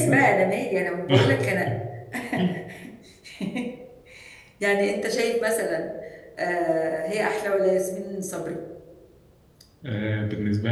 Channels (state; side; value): identical; both; correlation 1.00